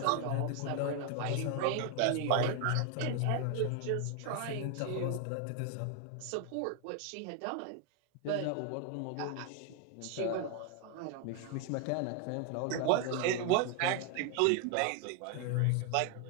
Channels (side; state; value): both; different; correlation 0.01